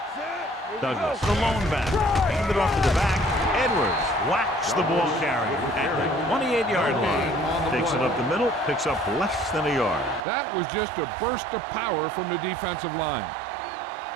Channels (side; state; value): left; drops out; at 10.2 s